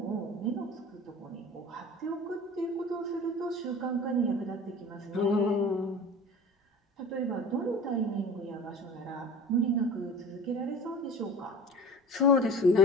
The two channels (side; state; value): both; normal; correlation 0.39